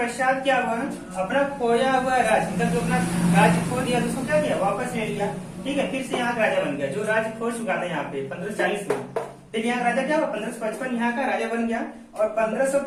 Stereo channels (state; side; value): identical; both; correlation 1.00